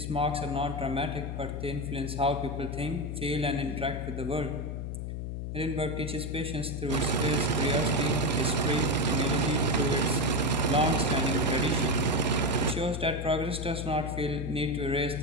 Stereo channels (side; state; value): left; noise; hum, 5 dB below the sound